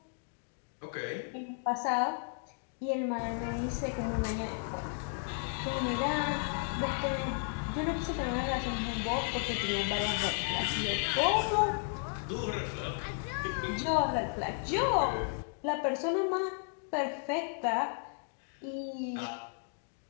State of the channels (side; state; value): right; silent; 55 dB below the other